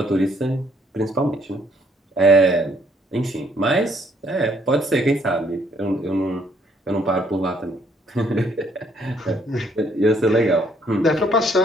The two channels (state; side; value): normal; both; correlation 0.67